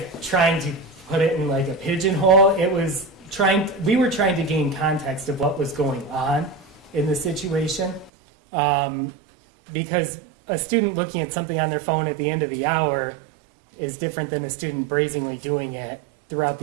trying to put it in like a pigeonhole. We were trying to gain context of what was going on in the situation. Because a student looking at something on their phone at the end of the hour is different than a student brazenly doing it throughout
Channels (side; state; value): left; drops out; at 8.1 s